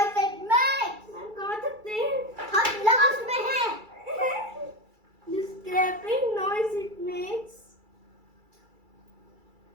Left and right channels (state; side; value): late; left; 2.3 ms